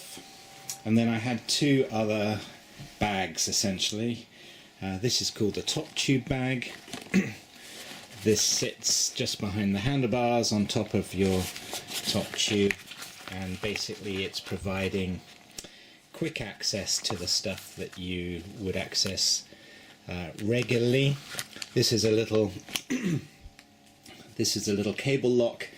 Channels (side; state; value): both; identical; correlation 1.00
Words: And then I had two other bags essentially. This is called a top tube bag. This sits just behind the handlebars on top of your top tube, and basically it's providing quick access to the stuff that you would access regularly. This is a little cable lock,